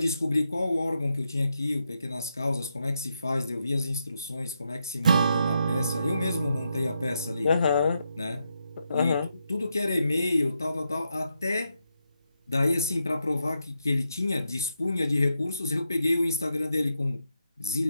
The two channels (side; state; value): both; inverted; correlation -0.83